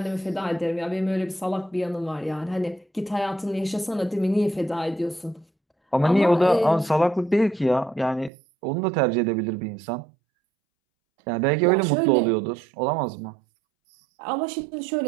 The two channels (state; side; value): drops out; left; at 8.3 s